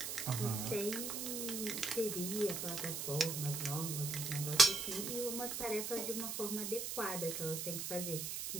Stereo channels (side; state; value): right; noise; hiss, 3 dB below the sound